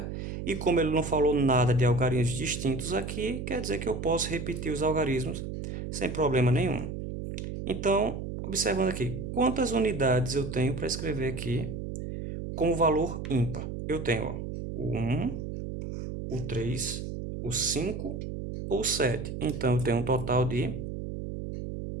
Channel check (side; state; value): right; noise; hum, 6 dB below the sound